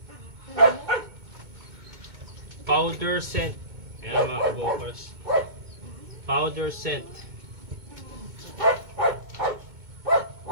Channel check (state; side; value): late; left; 2.2 ms